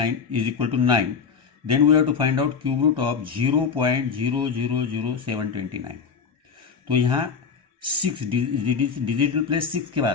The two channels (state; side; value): quieter; right; 5.9 dB